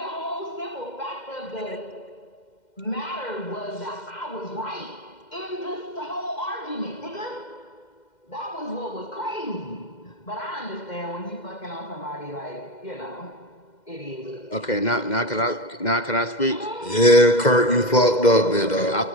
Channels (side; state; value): right; late; 2.1 ms